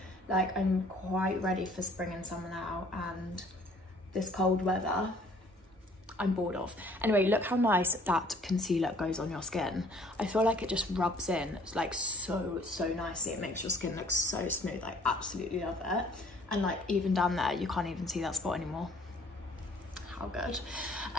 Like, I'm quite ready for spring and summer now, and this cold weather, I'm bored of. Anyway, look how nice that concealer goes on your skin. I feel like it just rubs in like so nicely. It makes your skin look so smooth. I absolutely love it. And like even down there, you can't even see that spot anymore. how good.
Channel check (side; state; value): both; normal; correlation 0.57